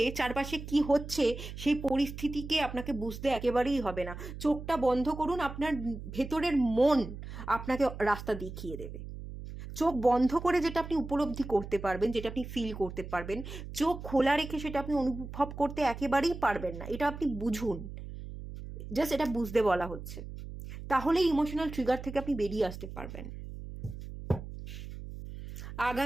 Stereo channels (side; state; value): right; noise; hum, 10 dB below the sound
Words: চারপাশে কি হচ্ছে সেই পরিস্থিতিকে আপনাকে বুঝতে একেবারেই হবে না। চোখটা বন্ধ করুন, আপনার ভেতরের মন আপনাকে রাস্তা দেখিয়ে দেবে। চোখ বন্ধ করে যেটা আপনি উপলব্ধি করতে পারবেন, যেটা আপনি ফিল করতে পারবেন, চোখ খোলা রেখে সেটা আপনি অনুভব করতে একেবারেই পারবেন না। এটা আপনি বুঝুন, জাস্ট এটা বুঝতে বলা হচ্ছে। তাহলে ইমোশনাল ট্রিগার থেকে আপনি বেরিয়ে আসতে পারবেন।